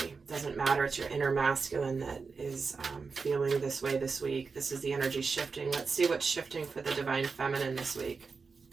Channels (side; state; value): left; quieter; 4.8 dB